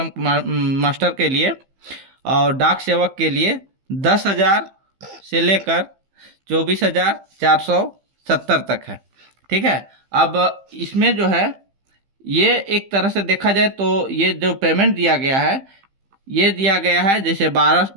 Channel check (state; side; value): late; left; 15 ms